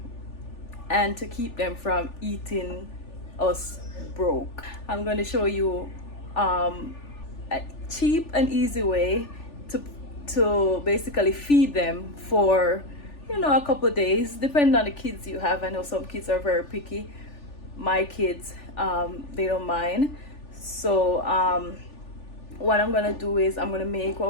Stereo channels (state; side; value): late; right; 3.4 ms